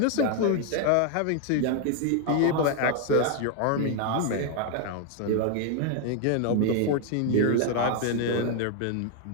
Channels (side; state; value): both; different; correlation 0.01